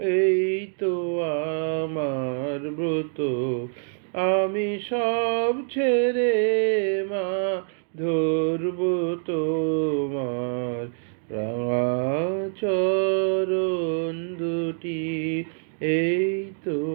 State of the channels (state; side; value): silent; left; digital silence